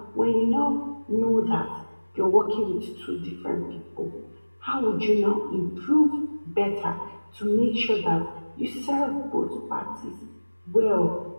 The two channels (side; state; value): both; inverted; correlation -1.00